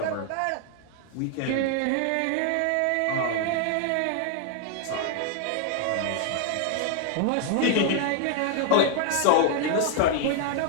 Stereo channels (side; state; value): both; different; correlation 0.00